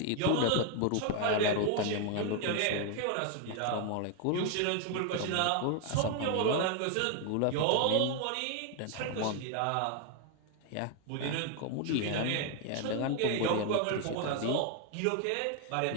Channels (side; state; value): both; different; correlation 0.01